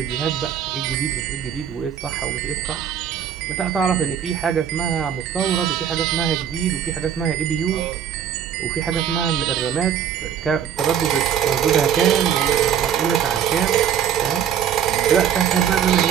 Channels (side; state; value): left; quieter; 8.8 dB